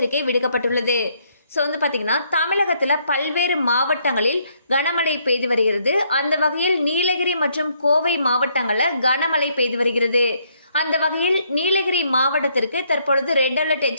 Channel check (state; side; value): inverted; both; correlation -0.70